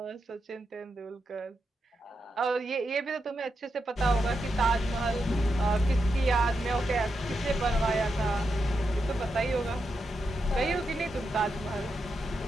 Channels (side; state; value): both; normal; correlation 0.85